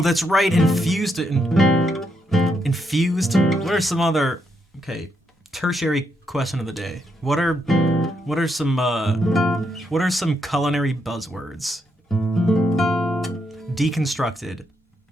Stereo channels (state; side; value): normal; both; correlation 0.79